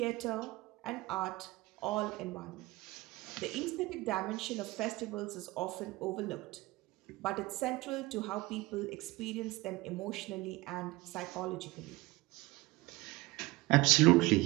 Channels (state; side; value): quieter; left; 20.8 dB